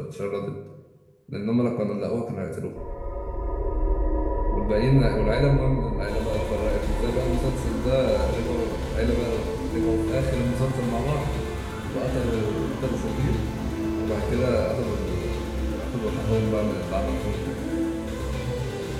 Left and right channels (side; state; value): both; identical; correlation 1.00